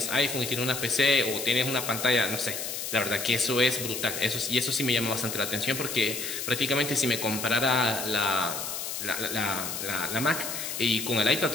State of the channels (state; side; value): noise; left; hiss, 5 dB below the sound